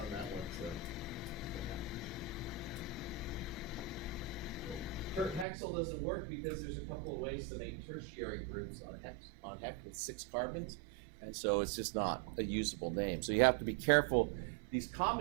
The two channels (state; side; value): drops out; left; at 5.5 s